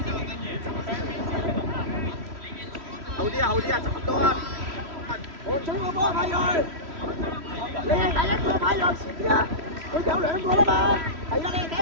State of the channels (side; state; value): left; late; 3.1 ms